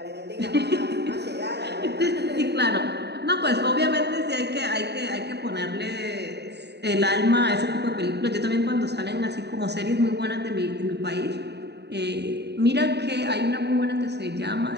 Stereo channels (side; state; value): left; late; 0.49 ms